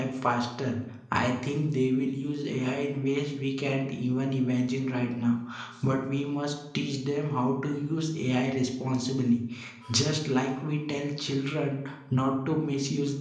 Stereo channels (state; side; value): identical; both; correlation 1.00